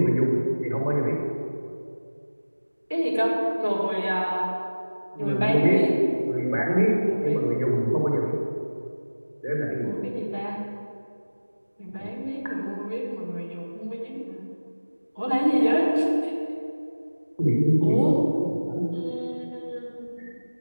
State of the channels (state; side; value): inverted; both; correlation -1.00